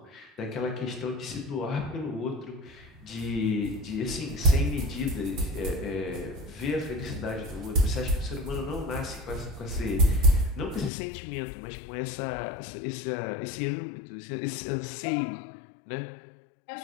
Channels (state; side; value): drops out; right; at 10.9 s